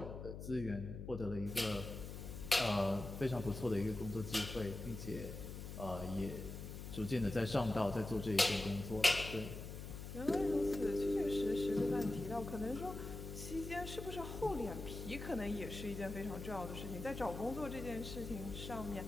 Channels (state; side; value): noise; left; hum, 8 dB below the sound